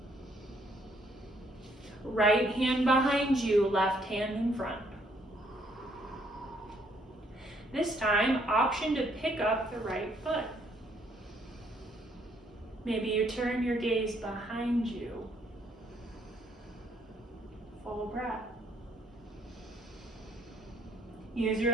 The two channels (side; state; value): both; normal; correlation 0.68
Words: Right hand behind you, left hand in front. This time, option to pick up the right foot. Maybe you turn your gaze behind you. Full breath. Use your